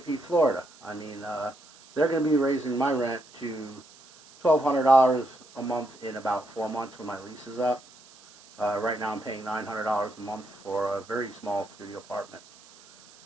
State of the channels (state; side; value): noise; right; hiss, 24 dB below the sound